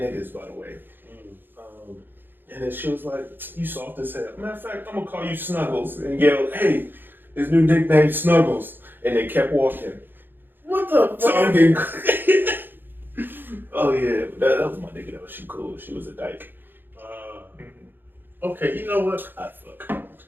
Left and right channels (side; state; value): left; late; 0.096 ms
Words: niggas, by the way. And then she was like, "You soft as hell. Matter of fact, I'm gonna call you Snuggles," and yell, "Hey, his new nickname Snuggles." and they kept walking. What the So I'm fuck? getting. Oh yeah, that was my nigga though. She cool. She was a dyke. Okay, you know what? I fuck.